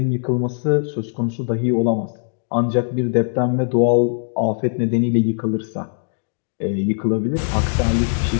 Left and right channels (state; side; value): silent; right; digital silence